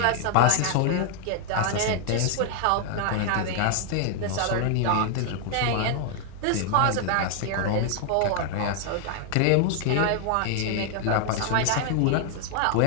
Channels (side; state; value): both; different; correlation 0.00